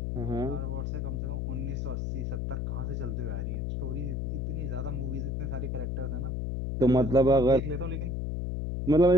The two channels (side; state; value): left; noise; hum, 2 dB below the sound